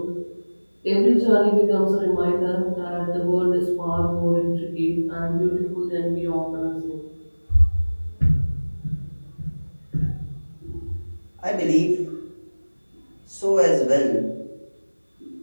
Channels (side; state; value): both; inverted; correlation -1.00